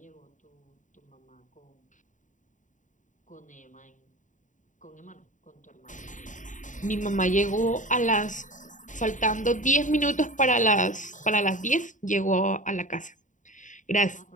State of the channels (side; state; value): right; late; 0.37 ms